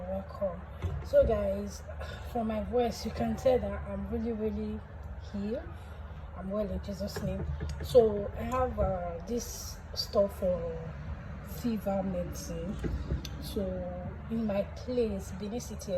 welcome. So guys, from my voice you can tell that I'm really healed. I'm well in Jesus' name. So I have this stuff for fever medicine. So in my place, Benin City,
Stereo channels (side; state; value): both; identical; correlation 1.00